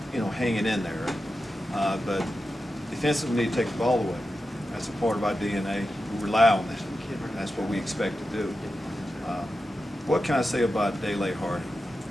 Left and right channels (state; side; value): normal; both; correlation 0.91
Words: hanging in there, but defensively we need to take the ball away. That's a part of our DNA. We rely on that. That's what we expect to do. What can I say about Dele Hardy?